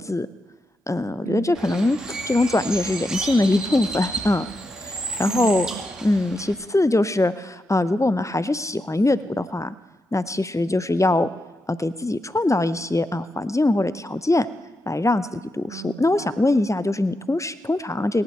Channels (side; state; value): both; normal; correlation 0.86